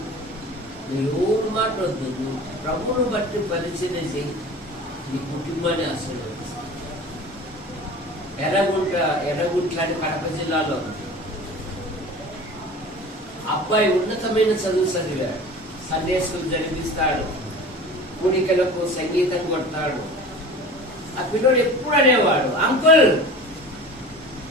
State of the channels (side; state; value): both; normal; correlation 0.38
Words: నువ్వు ఎవరు మాట వద్దు, నువ్వు ప్రభువును బట్టి పరిచర్య చేయి, నీ కుటుంబాన్ని ఆశీర్వదిస్తావు. ఎర్రగుంట్ల అని కడప జిల్లాలో ఉంది. అబ్బాయి ఉన్నతమైన చదువు చదివాడు, సండే స్కూల్ జరిపిస్తాడు, కూడికలకు సంగీతం కొడతాడు. ఆ పిల్లడు ఎప్పుడు అనేవాడు, అంకుల్